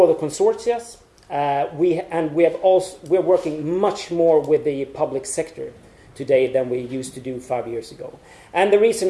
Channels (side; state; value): both; identical; correlation 1.00